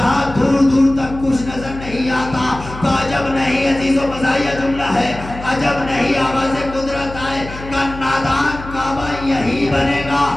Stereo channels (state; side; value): noise; left; hum, 13 dB below the sound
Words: دور دور تک کچھ نظر نہیں آتا، تو عجب نہیں عزیز و مزاحیہ جملہ ہے، عجب نہیں آواز قدرت آئے کہ نادان کعبہ یہی بنے گا۔